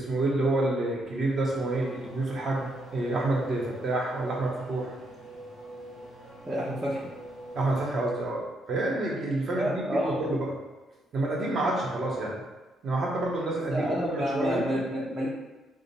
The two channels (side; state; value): both; normal; correlation 0.76